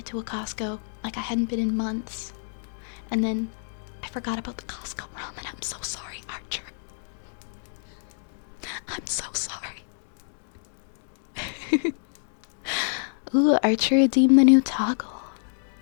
to a Costco. Like I hadn't been in months. And then I forgot about the Costco ramen. I'm so sorry, Archer. I'm so sorry. Ooh, Archer redeemed the new toggle.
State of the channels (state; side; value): silent; right; digital silence